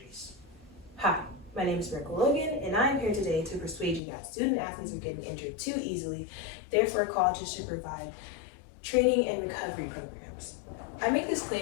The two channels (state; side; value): drops out; right; at 4.0 s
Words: Hi, my name is Miracle Logan, and I'm here today to persuade you that student athletes are getting injured too easily, therefore colleges should provide training and recovery programs. I make this